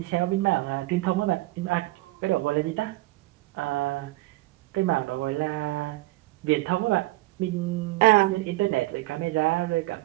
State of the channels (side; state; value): left; quieter; 19.7 dB